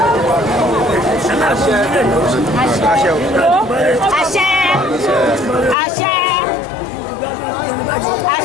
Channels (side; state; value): right; drops out; at 5.8 s